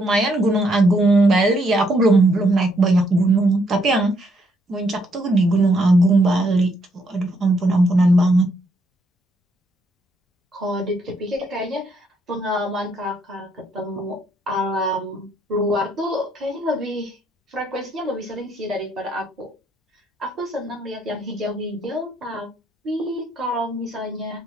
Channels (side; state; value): both; normal; correlation 0.72